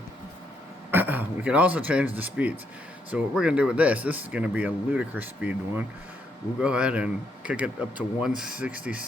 We can also change the speeds. So what we're going to do with this is going to be a ludicrous speed one. We'll go ahead and kick it up to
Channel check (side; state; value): both; normal; correlation 0.76